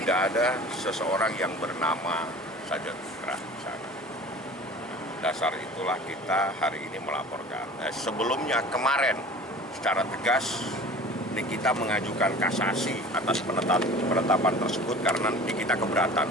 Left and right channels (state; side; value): normal; both; correlation 0.42